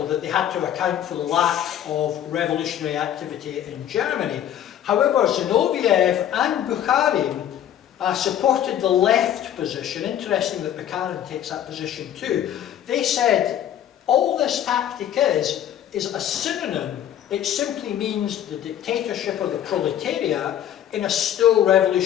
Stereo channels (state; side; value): quieter; right; 10.7 dB